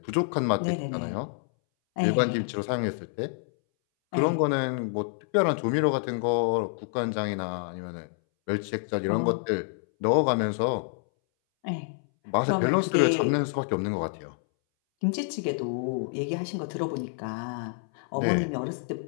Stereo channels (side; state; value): right; silent; 60 dB below the other